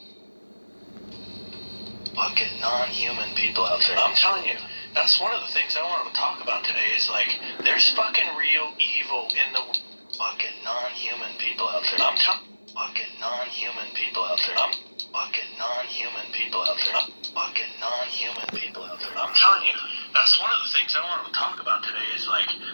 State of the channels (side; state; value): both; inverted; correlation -1.00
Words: Fucking non-human people out there. I'm telling you, that's one of the things I want to talk about today is like, there's fucking real evil in the fucking non-human people out there. I'm telling fucking non-human people out there. I'm fucking non-human people out there. I'm fucking non-human people out there. I'm telling you, that's one of the things I want to talk about today is like,